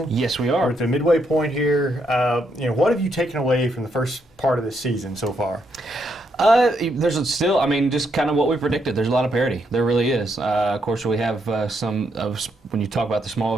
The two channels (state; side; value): normal; both; correlation 0.77